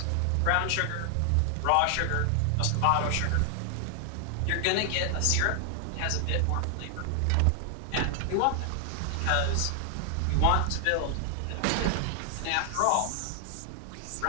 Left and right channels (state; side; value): different; both; correlation 0.00